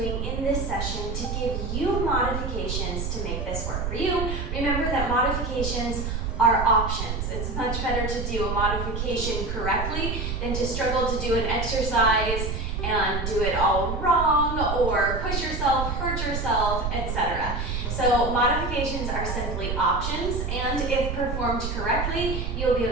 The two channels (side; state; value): right; noise; rumble, 3 dB below the sound